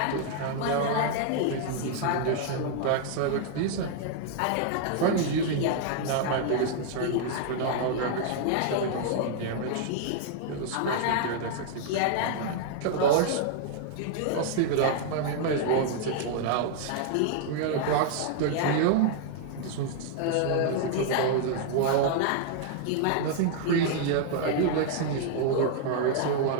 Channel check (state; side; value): different; both; correlation -0.01